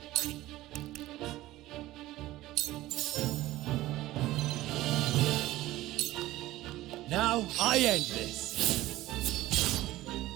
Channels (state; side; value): quieter; left; 16.5 dB